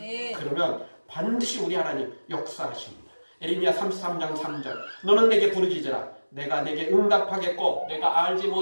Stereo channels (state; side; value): inverted; both; correlation -1.00